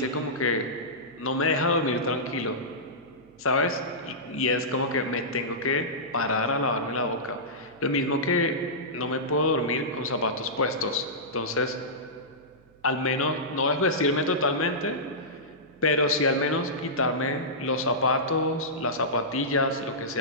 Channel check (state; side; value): noise; right; hum, 29 dB below the sound